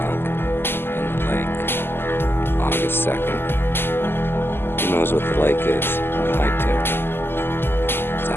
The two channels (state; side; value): late; right; 0.11 ms